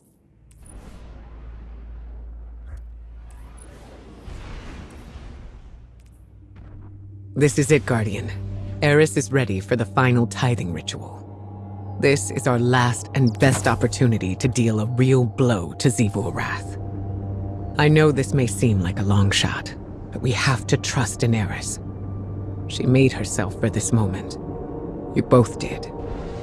This is it, Guardian. Eris is ready for the final tithing ritual. This is our last and best opportunity to deal a real blow to Xivu-Arath. I know this may seem like a long shot, but we have to trust in Eris. She made herself for this moment. You both did.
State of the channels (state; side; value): identical; both; correlation 1.00